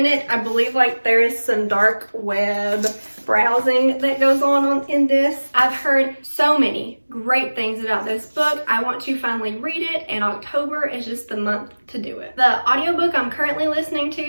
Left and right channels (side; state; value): both; inverted; correlation -1.00